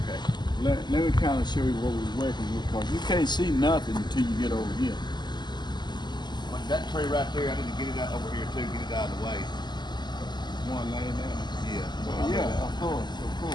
Let me kind of show you what we're working with, because you can't see nothing until you get over here. Like that tree right there, I need to get it out over here too, get it out of the way. One laying down. Yeah. Yeah, of course.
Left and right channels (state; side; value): late; right; 0.21 ms